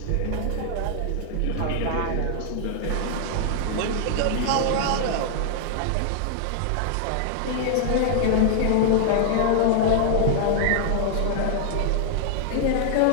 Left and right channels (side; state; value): both; different; correlation 0.00